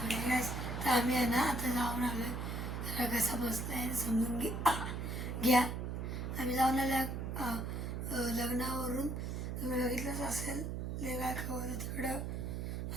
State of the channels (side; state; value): right; noise; hum, 3 dB below the sound